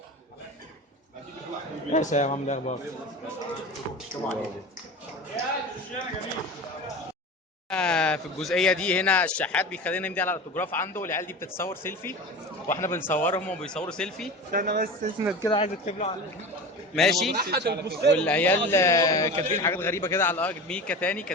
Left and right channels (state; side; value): normal; both; correlation 0.31